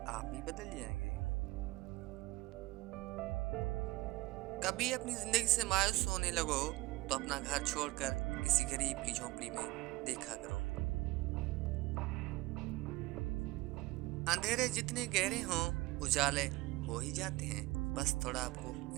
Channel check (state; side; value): quieter; left; 21.0 dB